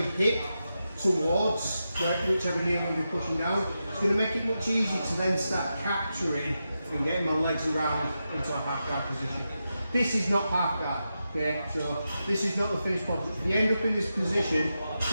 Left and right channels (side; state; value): both; inverted; correlation -0.89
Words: towards whichever knee I'm going to be pushing down. It's going to make it much easier to then start capturing and getting my legs around into a half guard position. This is not half guard, okay? So this is not the finished product. If you end up in this position, it's